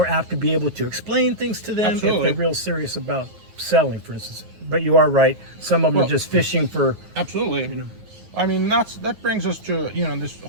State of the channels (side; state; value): left; late; 9.3 ms